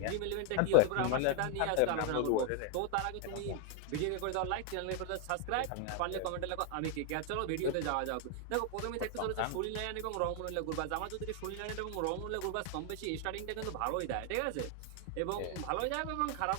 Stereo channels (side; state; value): both; different; correlation 0.00